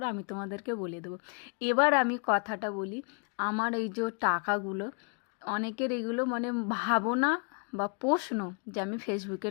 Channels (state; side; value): quieter; right; 39.0 dB